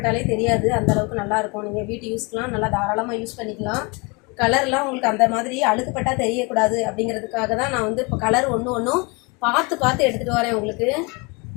தெரியாது, அந்தளவுக்கு நல்லாயிருக்கும். நீங்கள் வீட்டு யூஸ்க்கெலாம் நல்லா தாராளமாக யூஸ் பண்ணிக்கலாம். கலர்லாம் உங்களுக்கு அந்த மாதிரி அழுக்குப்பட்டால் தெரியக்கூடாது அப்படிங்கிறதுக்காக தான் நான் வந்து இப்போ கலர் ஒன்றும் பார்த்து எடுத்துகிட்டு வரேன் உங்களுக்கு.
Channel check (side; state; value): right; quieter; 28.5 dB